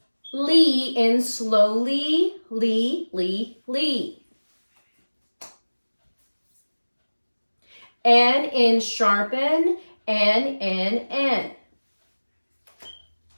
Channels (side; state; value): both; inverted; correlation -1.00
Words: Lee in slowly, lee. N in sharpen, N.